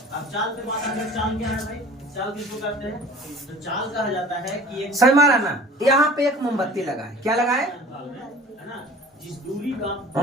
अब चाल पे बात आगे, चाल क्या है भाई? चाल किसको कहते हैं? तो चाल कहा जाता है कि एक सही मारा ना। यहाँ पे एक मोमबत्ती लगा है। क्या लगा है? है ना, जिस दूरी का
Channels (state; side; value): normal; both; correlation 0.44